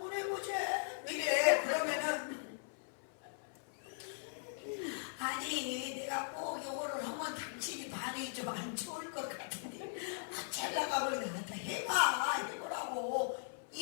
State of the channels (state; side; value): silent; right; 52 dB below the other